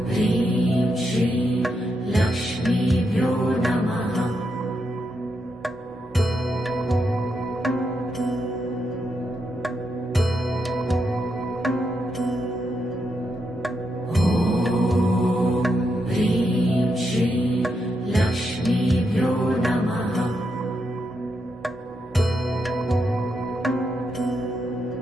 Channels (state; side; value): normal; both; correlation 0.82